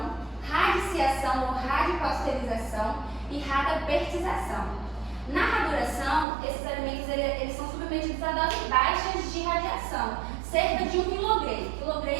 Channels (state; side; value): drops out; left; at 6.2 s